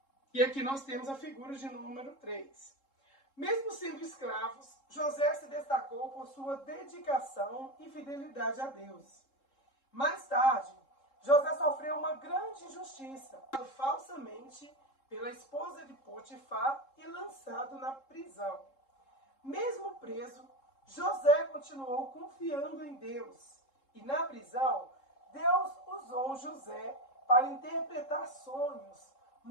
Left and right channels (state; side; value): late; right; 3.7 ms